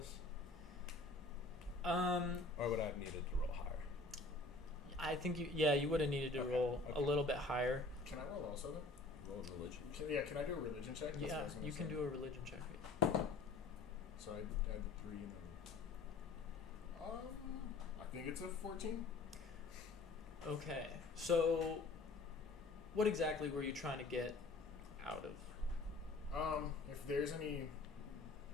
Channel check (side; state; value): right; quieter; 3.4 dB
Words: Or would I have needed to roll higher? I think you would have needed to Okay, roll a okay. little bit higher. Can I roll also then? Roll religion. Can I do a religion check? That's what I Yeah, was gonna you can say. do a religion check. So I add 3 and then. I think it's a 14. Okay, so what exactly were you trying to get out of? If there's any